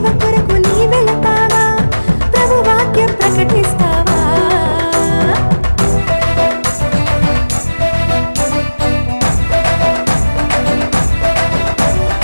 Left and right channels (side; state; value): both; inverted; correlation -1.00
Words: కొరకు నీ వెళతావా, ప్రభు వాక్యం ప్రకటిస్తావా?